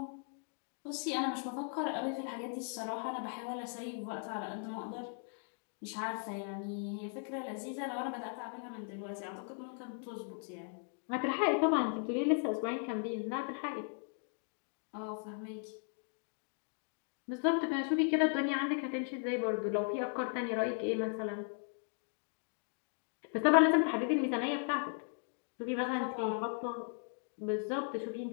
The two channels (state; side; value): silent; right; 53 dB below the other